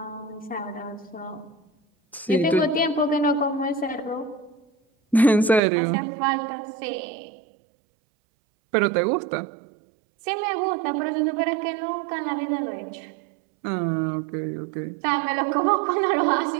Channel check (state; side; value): drops out; left; at 5.6 s